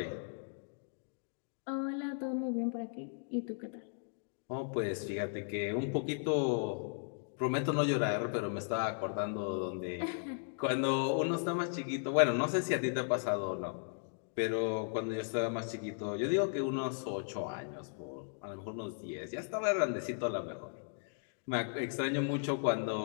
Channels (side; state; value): right; silent; digital silence